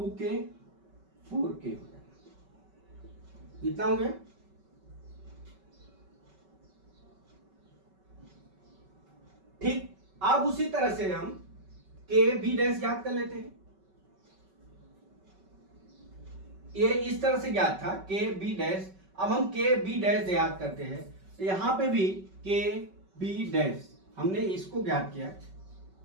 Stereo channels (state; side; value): late; left; 5.3 ms